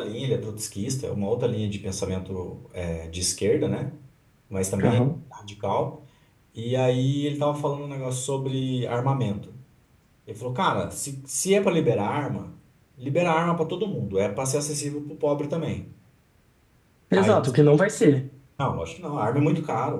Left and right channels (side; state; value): both; identical; correlation 1.00